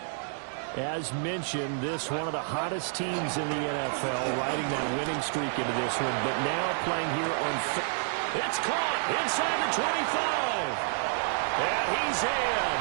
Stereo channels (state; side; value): silent; left; digital silence